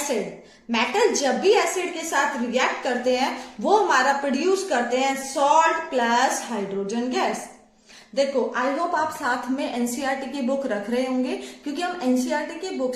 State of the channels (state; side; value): identical; both; correlation 1.00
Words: Metal जब भी एसिड के साथ रिएक्ट करते हैं वो हमारा प्रोड्यूस करते हैं सॉल्ट प्लस हाइड्रोजन गैस। देखो, आई होप आप साथ में एनसीईआरटी की बुक रख रहे होंगे, क्योंकि हम एनसीईआरटी की बुक